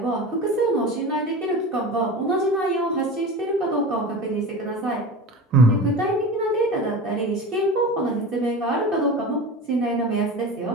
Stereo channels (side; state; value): both; normal; correlation 0.31